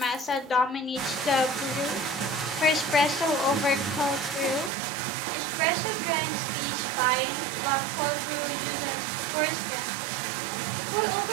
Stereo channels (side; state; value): left; drops out; at 4.7 s